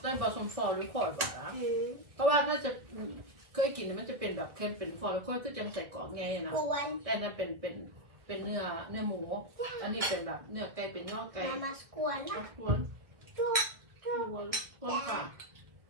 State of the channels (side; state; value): left; late; 1.5 ms